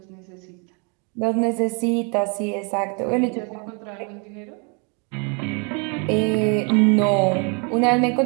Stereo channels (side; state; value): left; quieter; 34.7 dB